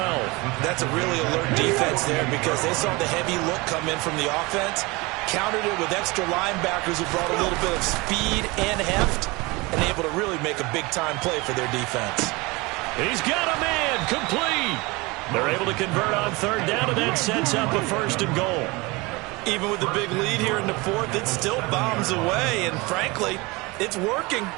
That's a really alert defense there because they saw the heavy look come in from the offense, countered it with extra linebackers who brought a little bit of speed and heft, and able to really make a big-time play for their defense. He's got a man, complete. They're able to convert on 3rd down, and that sets up a 1st and goal. Even with the big lead here in the 4th, it still bombs away, and frankly, it's working.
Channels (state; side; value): quieter; left; 24.4 dB